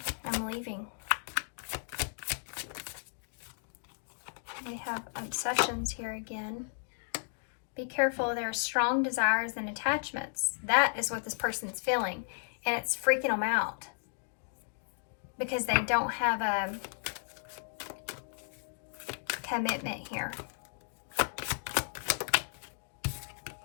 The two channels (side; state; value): right; silent; digital silence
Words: I'm leaving. We have obsessions here again. Be careful, there are strong desires and attachments. That is what this person is feeling, and it's freaking them out because they don't have a commitment here.